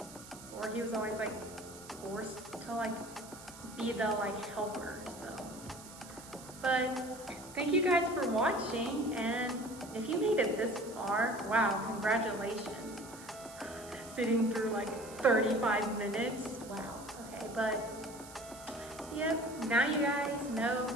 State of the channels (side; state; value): right; noise; hiss, 17 dB below the sound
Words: or he was always like forced to like be the like helper. So, but thank you guys for watching, and if you made it this far, wow, congratulations. Sitting through like 35 minutes. Wow. Okay, but yep, now you guys know